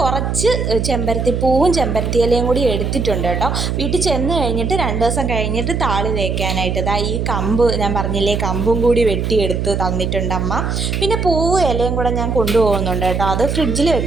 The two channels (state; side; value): noise; right; hum, 1 dB below the sound